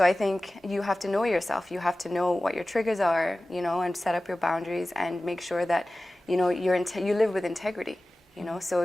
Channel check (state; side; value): normal; both; correlation 0.96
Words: I think you have to know yourself. You have to know what your triggers are, you know, and set up your boundaries and make sure that, you know, you live with integrity, you know. So